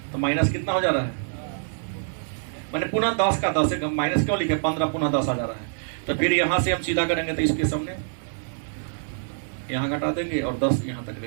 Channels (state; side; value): silent; left; digital silence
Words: तो माइनस कितना हो जा रहा है? मैंने पुनः 10 का 10 है, माइनस क्यों लिखे? 15 पुनः 10 आ जा रहा है। तो फिर यहां से हम सीधा करेंगे तो इसके सामने यहां घटा देंगे और 10 यहां तक